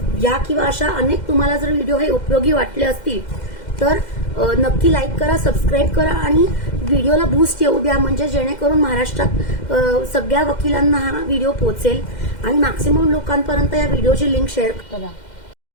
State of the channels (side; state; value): right; late; 2.1 ms